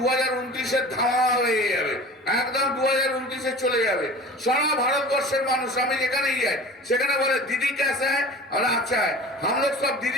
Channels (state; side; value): normal; both; correlation 0.39